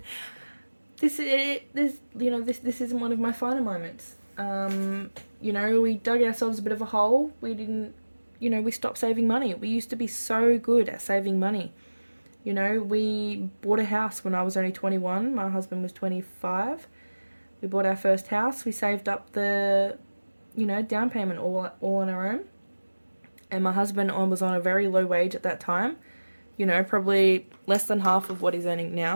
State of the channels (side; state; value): both; inverted; correlation -1.00